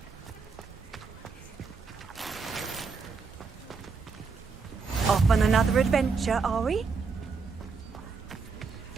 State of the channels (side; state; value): left; quieter; 4.9 dB